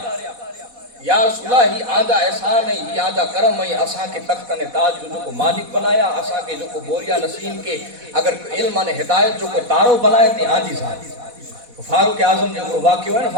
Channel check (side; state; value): left; late; 4.1 ms